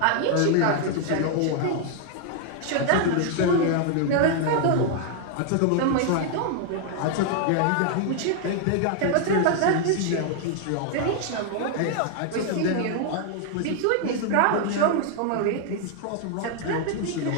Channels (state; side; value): different; both; correlation 0.00